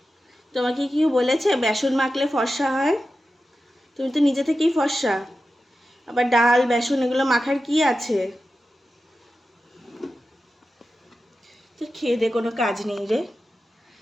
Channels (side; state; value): both; normal; correlation 0.92